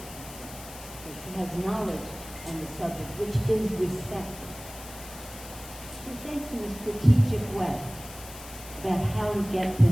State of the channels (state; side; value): noise; left; hiss, 15 dB below the sound